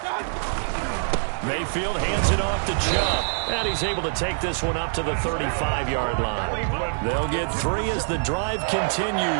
Mayfield hands it off to Chubb, and he's able to take this one up to the 35-yard line. They'll get 3 as the drive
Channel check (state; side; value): silent; left; digital silence